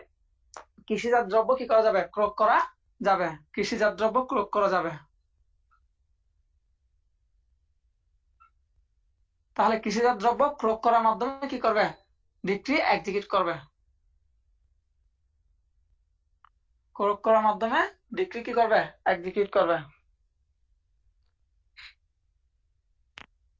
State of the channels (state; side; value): identical; both; correlation 1.00